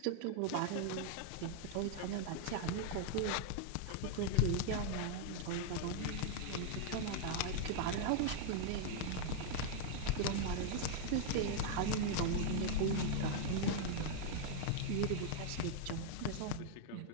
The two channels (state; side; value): different; both; correlation 0.00